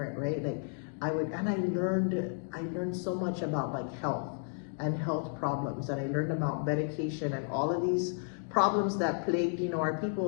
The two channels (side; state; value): right; silent; 56 dB below the other